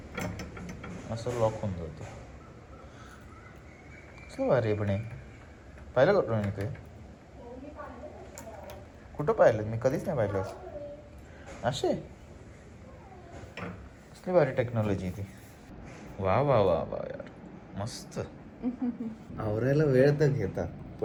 असं लॉक होऊन जातं. कसं भारी पण आहे. पाहिलं कुठं मी ते? कुठं पाहिलं? मी कधीच नाही पाहिलं असे. कसली भारी टेक्नॉलॉजी ती. वा वा वा वा यार, मस्त. आवरायला वेळ तर घेतात,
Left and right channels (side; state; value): both; identical; correlation 1.00